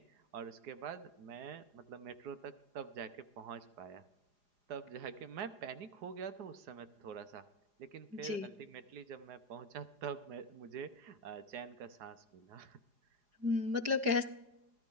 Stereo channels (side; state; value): left; late; 4.9 ms